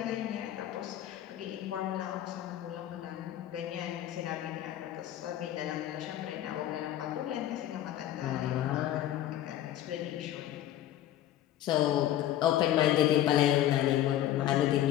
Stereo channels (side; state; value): right; quieter; 12.4 dB